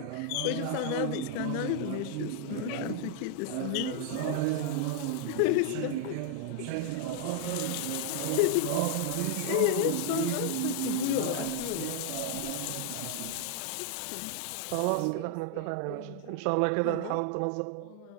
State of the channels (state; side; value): different; both; correlation 0.00